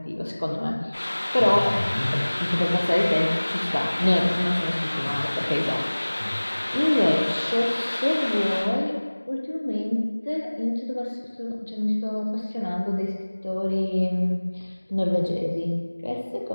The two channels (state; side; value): inverted; both; correlation -1.00